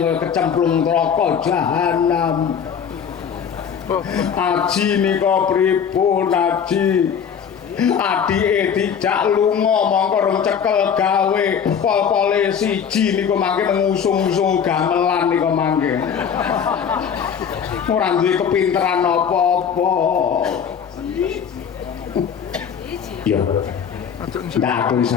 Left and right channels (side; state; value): right; quieter; 7.5 dB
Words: kecemplung neraka jahanam. Aji nika pripun Aji? Adike dijak lunga mongko rong cekel gawe pol-pole siji niku mangke ngusung-usung gamelan niku mangke. Ora duwe kepinteran apa-apa. Ya. Ndak aku